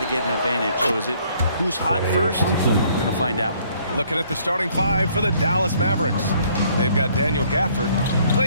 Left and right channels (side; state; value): both; inverted; correlation -0.63